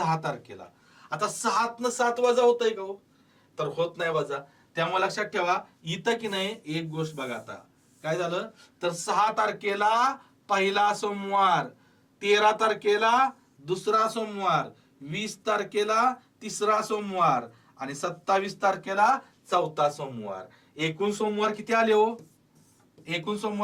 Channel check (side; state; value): both; identical; correlation 1.00